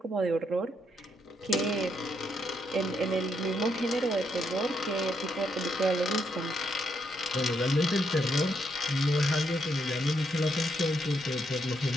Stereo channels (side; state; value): both; normal; correlation 0.77